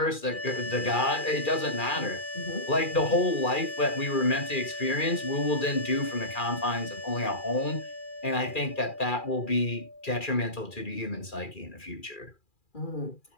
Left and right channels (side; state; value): right; late; 2.4 ms